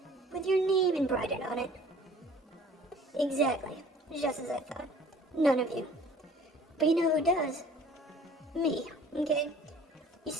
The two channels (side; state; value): both; normal; correlation 0.51